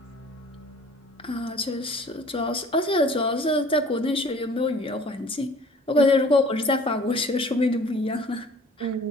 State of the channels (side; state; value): both; normal; correlation 0.50